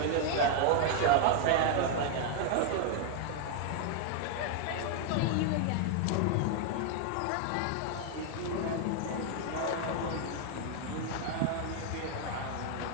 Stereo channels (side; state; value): both; different; correlation 0.00